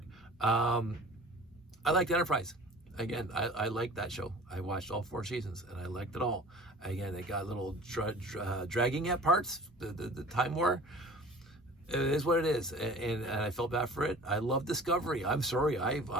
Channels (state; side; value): normal; both; correlation 0.44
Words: I liked Enterprise. Again, I liked that show. I watched all 4 seasons and I liked it all. Again, it got a little dragging at parts, the Time War. It is what it is, and I felt bad for it. I love Discovery. I'm sorry,